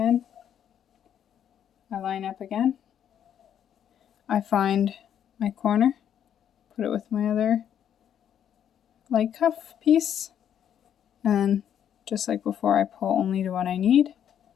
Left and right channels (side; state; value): right; quieter; 9.4 dB